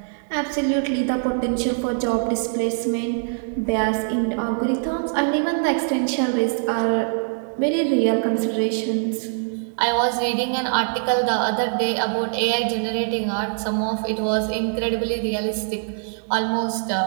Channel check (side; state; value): left; silent; 63 dB below the other